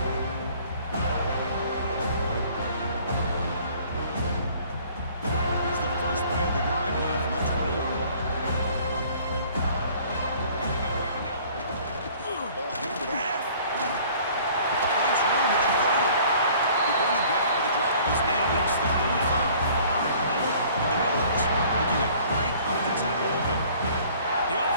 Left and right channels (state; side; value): inverted; both; correlation -0.53